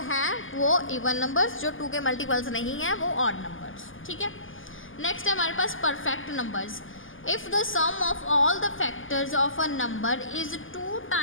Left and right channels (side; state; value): right; late; 0.58 ms